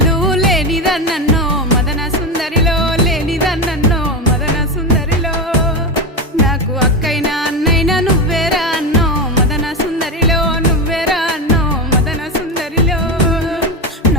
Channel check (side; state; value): both; normal; correlation 0.16